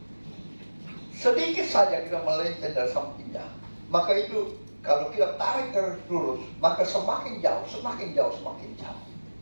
Sedikit saja kita melenceng dari sampingnya, Maka itu kalau kita tarik garis lurus, maka semakin jauh, semakin jauh, semakin jauh.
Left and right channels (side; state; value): both; inverted; correlation -1.00